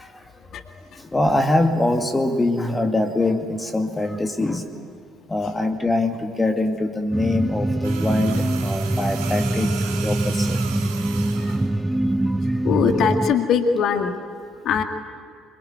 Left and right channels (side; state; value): both; normal; correlation 0.84